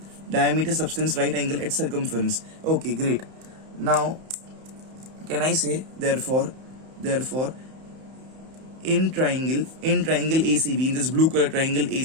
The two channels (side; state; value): left; late; 31 ms